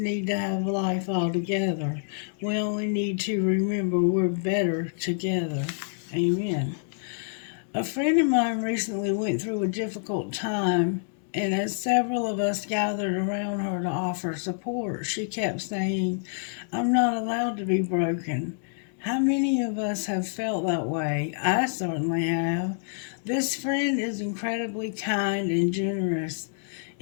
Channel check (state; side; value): silent; right; 60 dB below the other